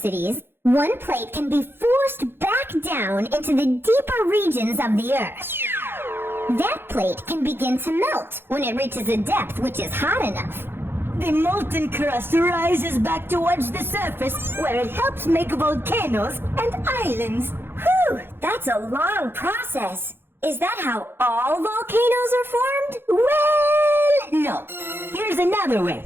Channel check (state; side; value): late; left; 0.10 ms